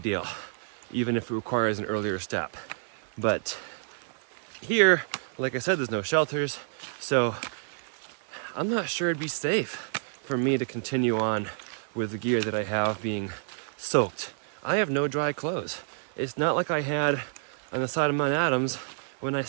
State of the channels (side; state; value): left; silent; 59 dB below the other